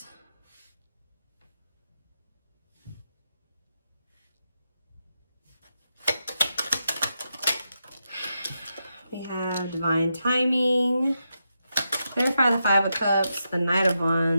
We have Divine Timing. Clarify the Five of Cups, the Knight of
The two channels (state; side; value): inverted; both; correlation -0.86